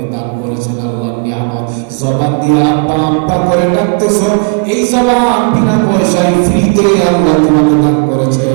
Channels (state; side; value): quieter; left; 36.3 dB